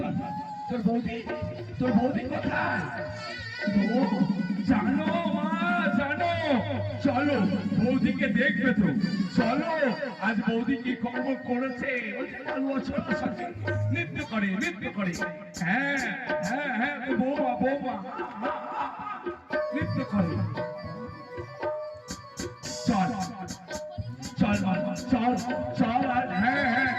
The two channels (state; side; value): identical; both; correlation 1.00